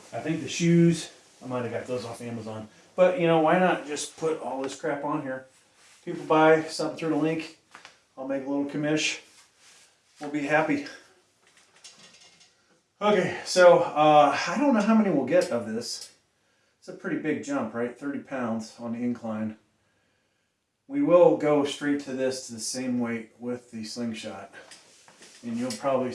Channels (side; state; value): both; identical; correlation 1.00